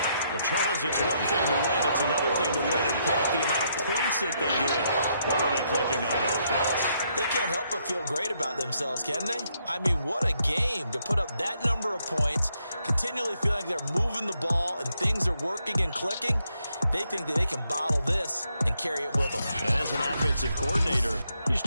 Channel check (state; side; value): inverted; both; correlation -0.76